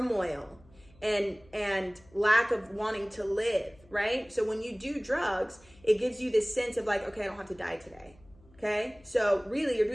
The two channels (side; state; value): left; noise; hum, 27 dB below the sound